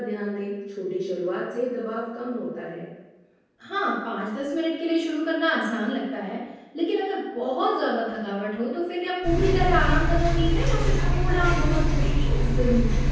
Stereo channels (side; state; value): both; identical; correlation 1.00